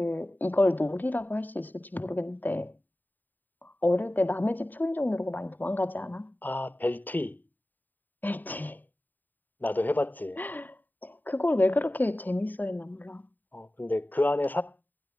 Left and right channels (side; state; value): right; late; 0.088 ms